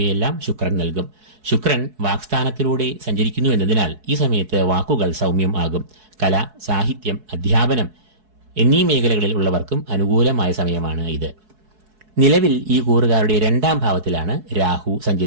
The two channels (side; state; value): left; late; 4.7 ms